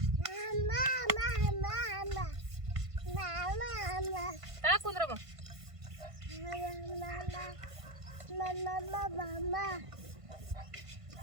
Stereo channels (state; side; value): late; left; 1.5 ms